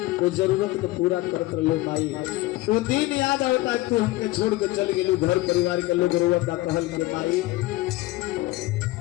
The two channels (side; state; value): right; quieter; 18.6 dB